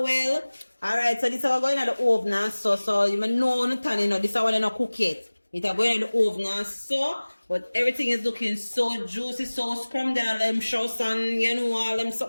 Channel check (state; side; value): inverted; both; correlation -1.00